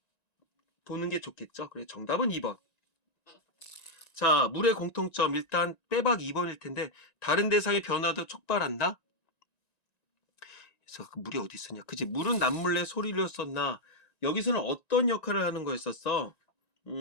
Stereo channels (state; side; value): late; right; 1.9 ms